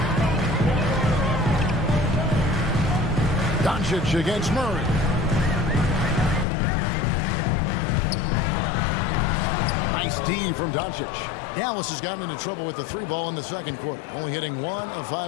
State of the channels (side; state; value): right; drops out; at 6.5 s